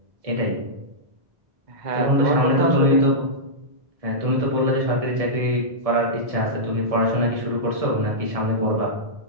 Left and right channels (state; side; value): late; left; 1.7 ms